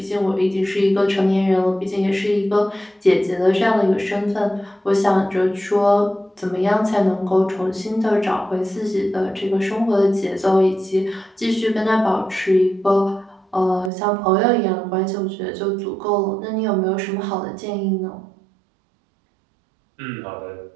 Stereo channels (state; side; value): drops out; left; at 13.9 s